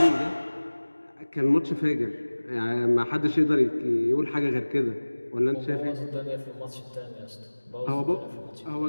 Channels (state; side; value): inverted; both; correlation -1.00